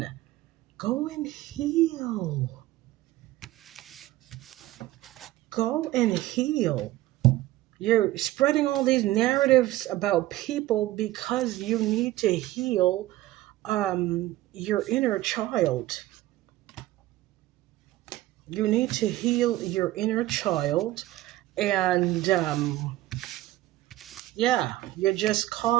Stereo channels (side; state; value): left; quieter; 16.0 dB